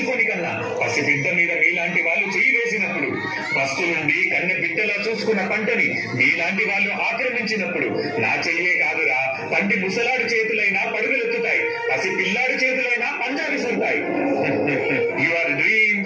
కన్నా పసిబిడ్డ మీద మీలాంటి వాళ్ళు చేయి వేసినప్పుడు, పస్తులుండి కన్న బిడ్డలా చూసుకున్న పంటని మీలాంటి వాళ్ళు ఆక్రమించినప్పుడు నా చెయ్యే కాదురా, పంటి ముసలాడు చేతులైనా పరుగులెత్తుతాయి, పసి పిల్లాడి చేతులైనా పంజా విసురుతాయి. Your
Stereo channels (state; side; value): identical; both; correlation 1.00